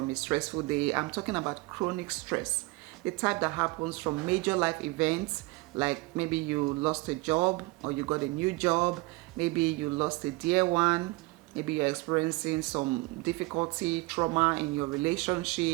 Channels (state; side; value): quieter; left; 23.5 dB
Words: a stressful day. I'm talking about chronic stress, the type that happens from major life events, like maybe you lost a job or you got a new job, maybe you lost a dear one, maybe you're experiencing some difficulty, trauma in your